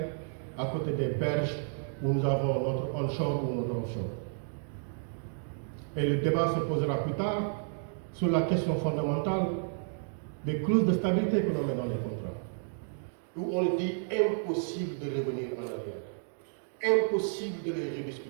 à côté des berges où nous avons notre onshore ou notre offshore. Et le débat se posera plus tard sur la question fondamentale des clauses de stabilité que l'on met dans les contrats, où on dit impossible de revenir en arrière, impossible de les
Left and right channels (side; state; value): left; silent; digital silence